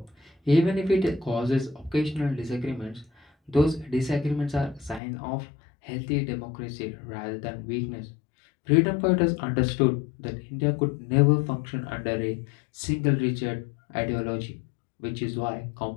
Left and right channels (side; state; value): right; drops out; at 5.0 s